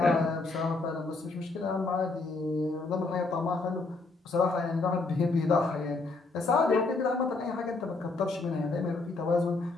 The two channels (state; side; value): quieter; right; 3.6 dB